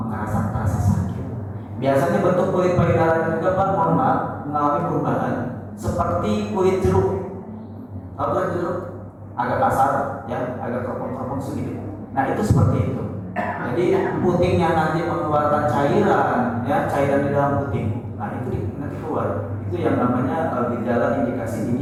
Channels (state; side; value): identical; both; correlation 1.00